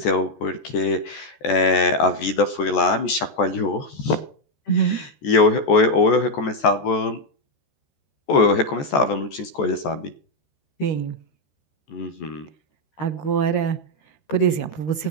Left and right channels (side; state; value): right; late; 14 ms